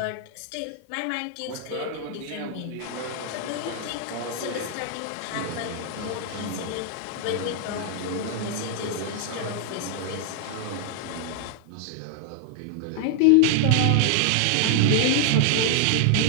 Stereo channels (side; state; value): both; different; correlation 0.00